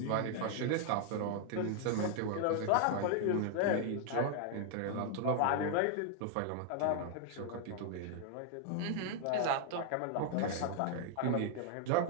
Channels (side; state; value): both; different; correlation 0.00